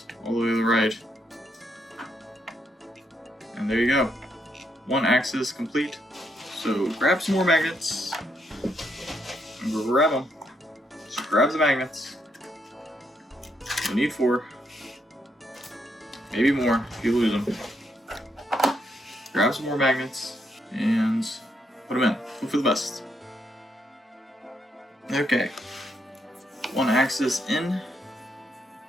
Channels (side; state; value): both; normal; correlation 0.77